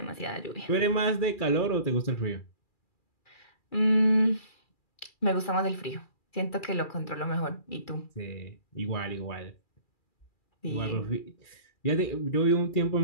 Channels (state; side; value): late; right; 2.4 ms